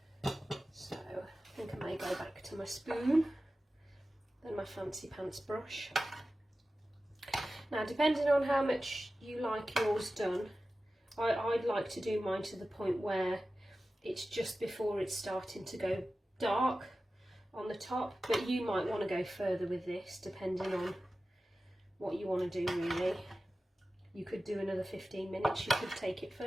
So I think I may go back to my spoon, then my fancy pants brush. Now, depending on how much you like yours done, I'd like to do mine to the point where it's just before it's starting to go dark on the top, but you might want to go further with this depending on what you want to do really. You could do another 15 minutes, you could take it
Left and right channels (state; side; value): normal; both; correlation 0.95